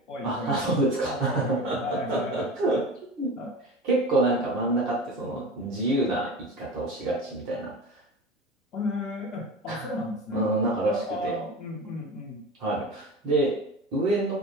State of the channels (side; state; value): both; normal; correlation 0.32